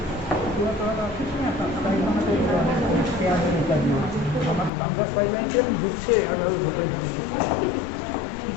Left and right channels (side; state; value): right; drops out; at 4.7 s